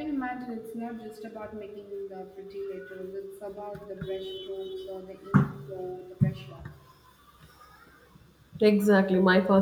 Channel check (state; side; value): identical; both; correlation 1.00